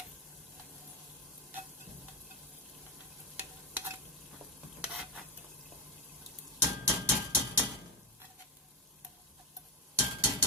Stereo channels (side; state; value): both; normal; correlation 0.13